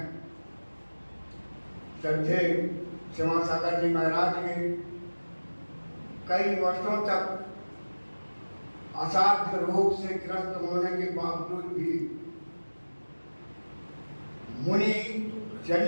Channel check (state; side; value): inverted; both; correlation -1.00